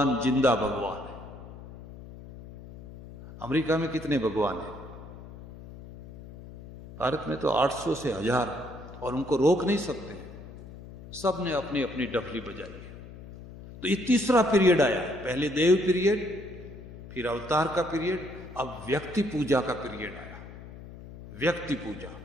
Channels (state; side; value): noise; left; hum, 15 dB below the sound